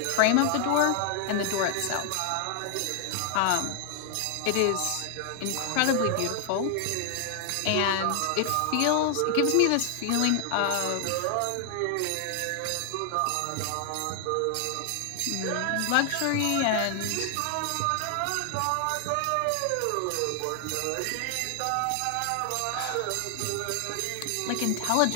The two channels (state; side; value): different; both; correlation 0.00